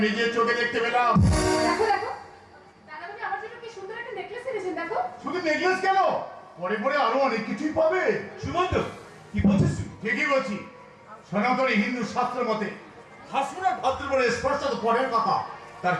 নিজের চোখে দেখতে পেলাম। দেখো দেখো দাদামণি আমার জন্য কি সুন্দর একটা নেকলেস এনেছেন দেখো। শুধু নেকলেস কেন, পরে পরে আরো অনেক কিছুই পাবে। সুমন্ত কি বলছিস তুই? ঠিকই বলছি। সনাতনী হিন্দু শাস্ত্র মতে ভাসুরের ভাদ্রবরে স্পর্শ তো পরের কথা, তার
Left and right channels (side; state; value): both; identical; correlation 1.00